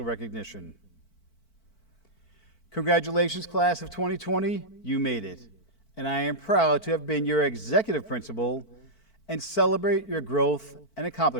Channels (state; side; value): late; right; 4.5 ms